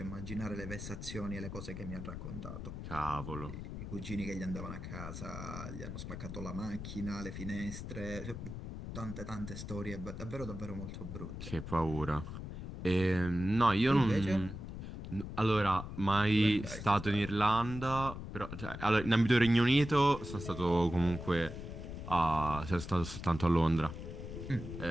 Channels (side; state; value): left; noise; rumble, 8 dB below the sound